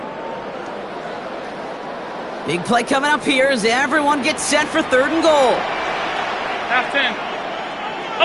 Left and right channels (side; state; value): both; identical; correlation 1.00